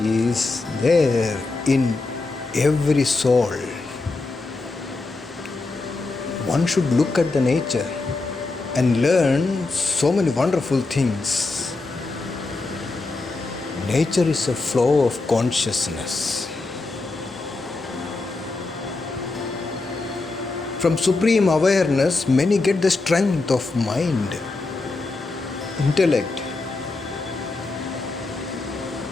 is there in every soul. One should look at the nature and learn so many wonderful things. Nature is a flow of consciousness. From supreme awareness, many get the strength of mind, intellect.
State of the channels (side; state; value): right; quieter; 3.5 dB